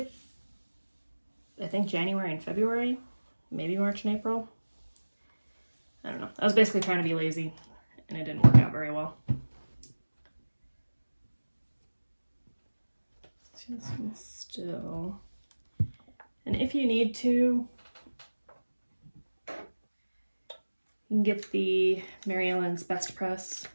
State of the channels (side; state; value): both; inverted; correlation -1.00